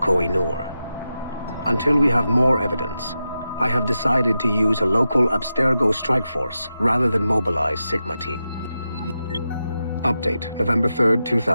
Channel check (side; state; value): both; inverted; correlation -0.90